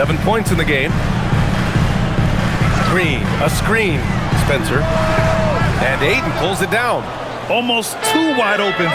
points in the game. Green, a screen. Spencer. And Ayton pulls it down. Almost too wide open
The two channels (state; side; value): identical; both; correlation 1.00